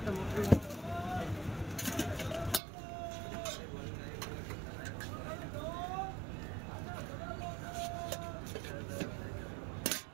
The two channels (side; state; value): left; drops out; at 2.6 s